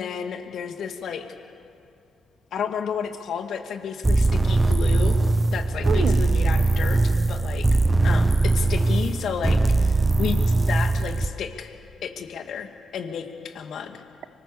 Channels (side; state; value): both; normal; correlation 0.92